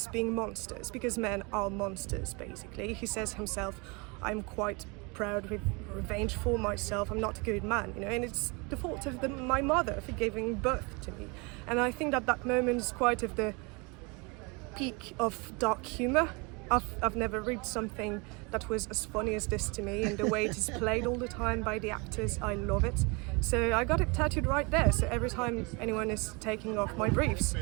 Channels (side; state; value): left; quieter; 29.4 dB